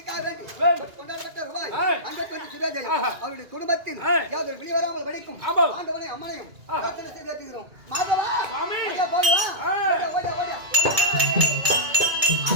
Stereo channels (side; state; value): left; late; 2.3 ms